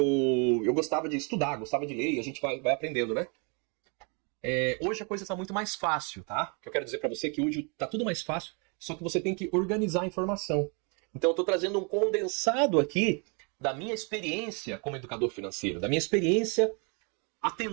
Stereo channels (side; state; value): left; quieter; 35.1 dB